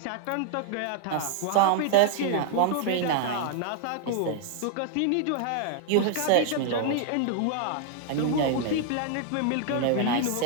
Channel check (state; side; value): different; both; correlation 0.00